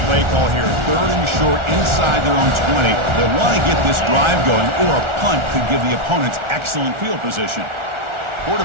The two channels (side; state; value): left; late; 1.4 ms